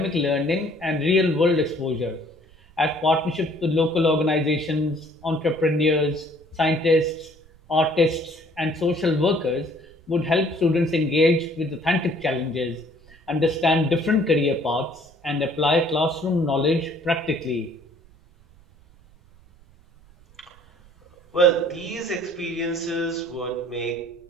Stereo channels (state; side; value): noise; right; rumble, 27 dB below the sound